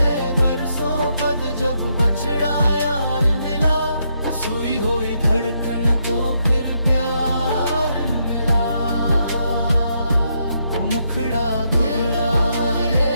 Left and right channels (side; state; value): both; inverted; correlation -0.78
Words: बरसों बाद जब बछड़ा यार मिला, सुई हुई धड़कन को फिर प्यार मिला। मुखड़ा दोहराए